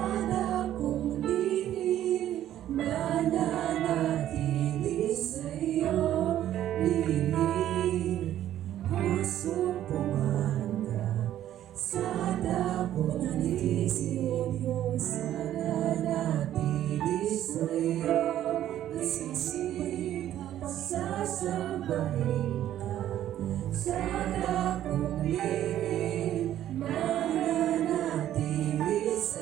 kung lihim mananatili sa'yo, lihim masumpungan ka. Sana kung nanisip sana natili sa'yo, sisihin ka, sasambahin ka. Sana kung lihim mananatili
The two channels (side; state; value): left; quieter; 12.0 dB